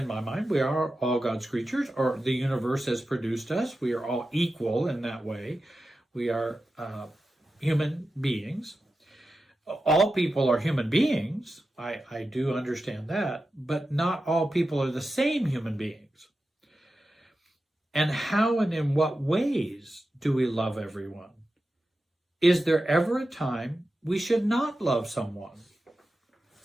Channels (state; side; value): normal; both; correlation 0.92